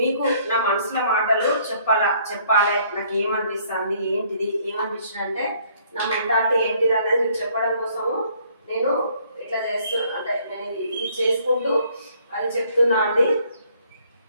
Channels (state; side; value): inverted; both; correlation -0.63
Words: నా మనసులో మాటలు చెప్పాలి. నాకు ఏమనిపిస్తుంది, ఏంటిది, ఏమనిపించింది అంటే నా మెంటాలిటీ ఏంటిది అనేది మీకు చెప్పడం కోసము నేను ఇట్లా అంటే నేను ఇది చేసుకుంటూ అది చెప్తున్నా అండి.